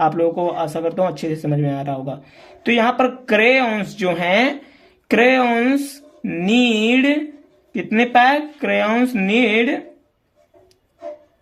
लोगों को आशा करता हूं अच्छे से समझ में आ रहा होगा। तो यहां पर क्रेयॉन्स जो हैं, क्रेयॉन्स नीड कितने पैक, क्रेयॉन्स नीड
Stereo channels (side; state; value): both; identical; correlation 1.00